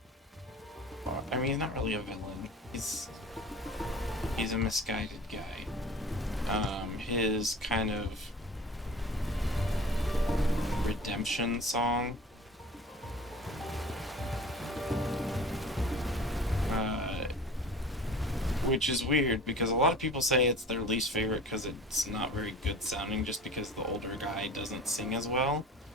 I mean, he's not really a villain. He's a misguided guy. His kind of redemption song. Which is weird because a lot of people say it's their least favorite because it's not very good sounding just because the older guy doesn't sing as well.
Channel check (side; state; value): both; normal; correlation 0.41